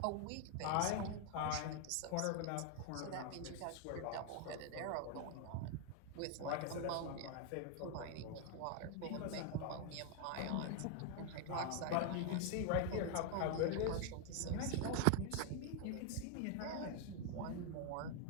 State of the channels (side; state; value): both; different; correlation 0.01